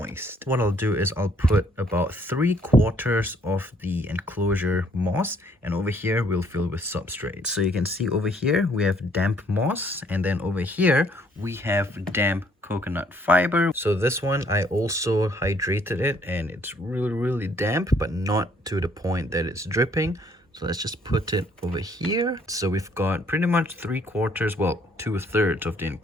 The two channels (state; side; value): normal; both; correlation 0.64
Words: What I'll do is I'll put about 3/4 of the enclosure moss, and over here we'll fill with substrate. So you can see over here we have damp moss, and then over here we have damp coconut fiber. So this one I also hydrated it, and it's really damp, but not to the point that it's dripping. So let's just put it over here. So we've got pretty much 3/4, well, 2/3 of the